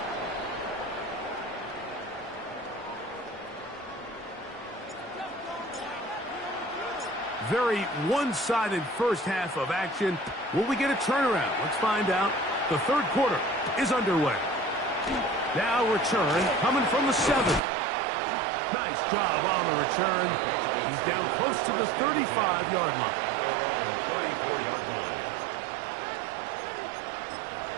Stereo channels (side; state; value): left; drops out; at 17.6 s